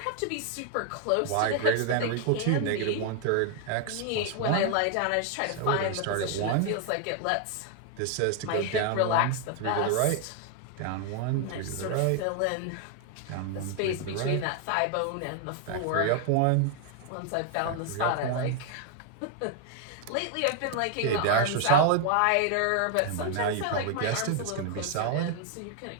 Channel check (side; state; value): both; different; correlation 0.00